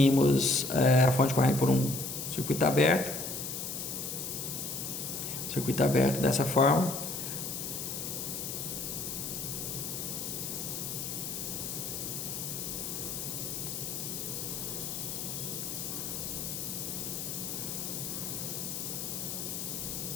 a fonte de corrente por um circuito aberto. Circuito aberto dessa forma.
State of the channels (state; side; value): noise; left; hiss, 4 dB below the sound